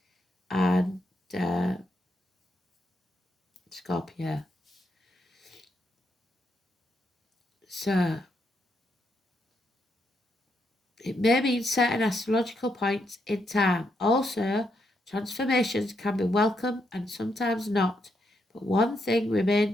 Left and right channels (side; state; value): both; normal; correlation 0.80